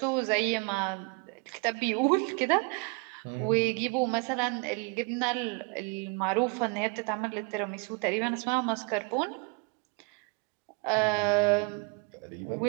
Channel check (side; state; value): left; quieter; 29.5 dB